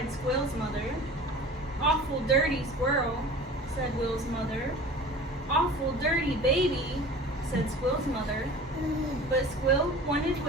Squill's mother. "Awful dirty squirrel," said Will's mother. "Awful dirty baby," said Squill's mother. But Squill wanted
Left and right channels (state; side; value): normal; both; correlation 0.40